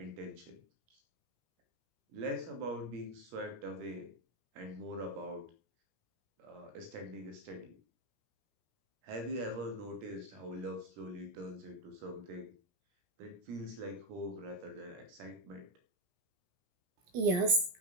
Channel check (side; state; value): left; late; 17 ms